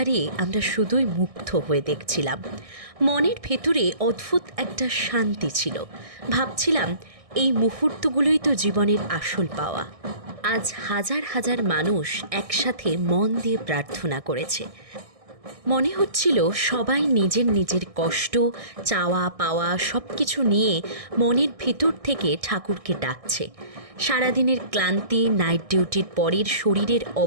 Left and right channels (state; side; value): late; left; 1.6 ms